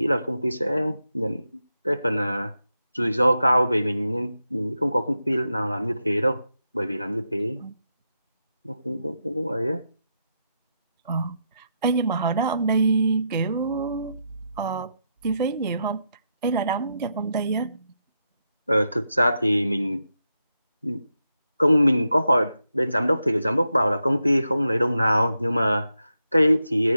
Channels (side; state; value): both; inverted; correlation -0.85